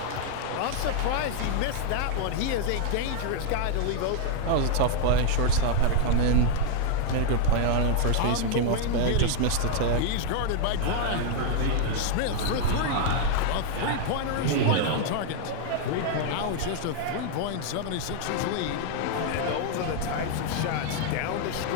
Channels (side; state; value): both; different; correlation 0.00